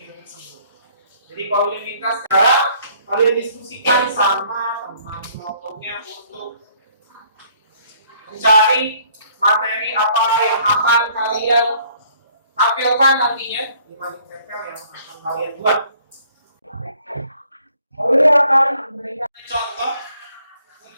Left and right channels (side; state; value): both; inverted; correlation -0.61